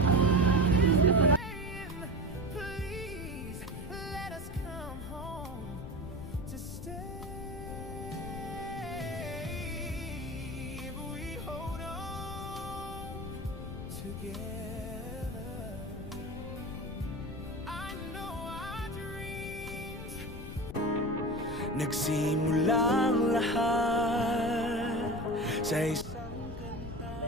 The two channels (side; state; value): left; noise; rumble, 9 dB below the sound